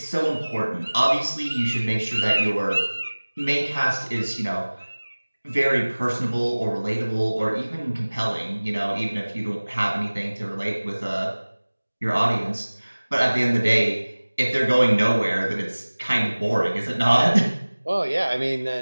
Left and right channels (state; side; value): inverted; both; correlation -1.00